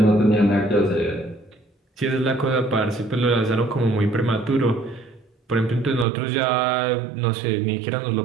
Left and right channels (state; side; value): drops out; left; at 6.1 s